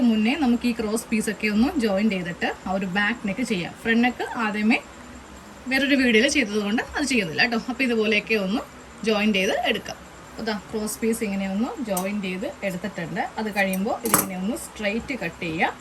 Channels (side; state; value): both; identical; correlation 1.00